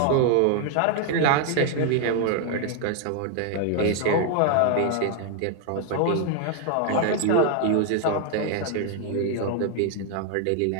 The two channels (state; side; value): different; both; correlation 0.00